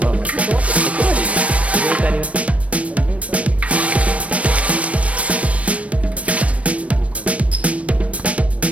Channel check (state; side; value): late; left; 0.064 ms